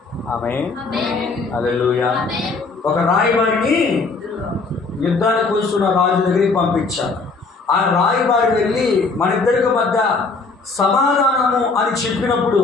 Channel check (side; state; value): right; quieter; 4.1 dB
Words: ఆమేన్. హల్లెలూయా. ఒక రాయబారిని యుద్ధానికి వస్తున్న రాజు దగ్గరికి పంపించాడు. ఆ రాయబారి వెళ్ళి మన ఇద్దరికి మధ్య సమాధానము అని చెప్పినప్పుడు